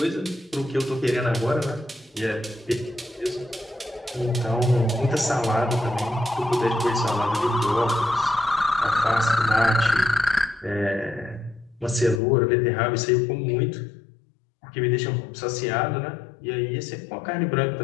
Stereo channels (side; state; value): right; drops out; at 12.2 s